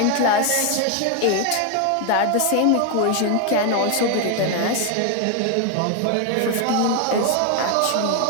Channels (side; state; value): both; different; correlation 0.01